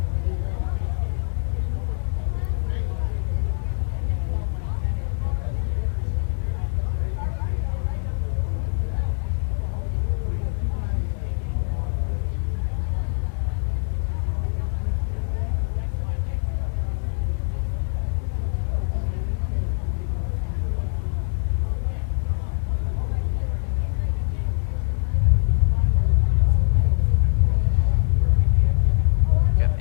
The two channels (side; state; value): right; silent; 63 dB below the other